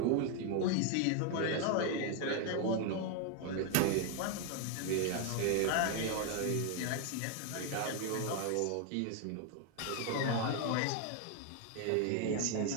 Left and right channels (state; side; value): different; both; correlation 0.01